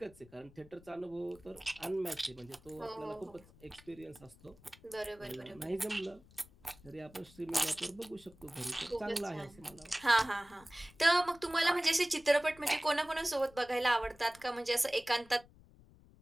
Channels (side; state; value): left; noise; rumble, 24 dB below the sound